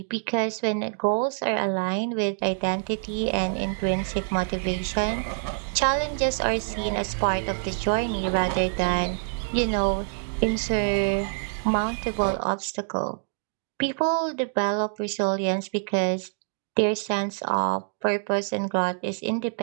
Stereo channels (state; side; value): silent; left; digital silence